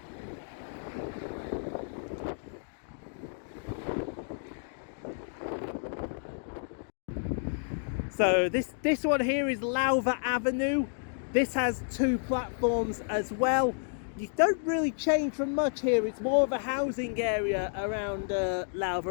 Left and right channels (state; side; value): silent; right; digital silence